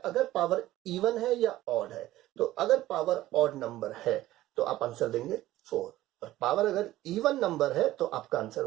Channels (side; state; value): left; quieter; 15.5 dB